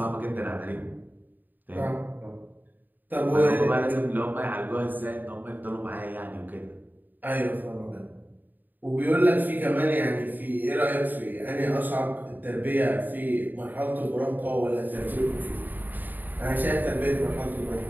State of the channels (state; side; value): late; left; 0.088 ms